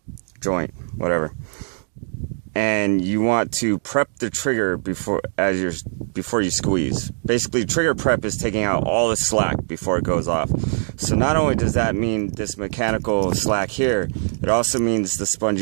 joint, whatever. And you want to prep the trigger before you squeeze. Basically, trigger prep is taking out all the slack before it goes off. So not only does that mean this mechanical slack here, it also means the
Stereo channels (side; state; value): left; silent; digital silence